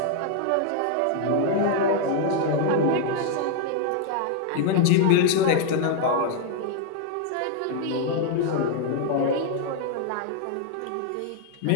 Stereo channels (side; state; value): both; different; correlation 0.00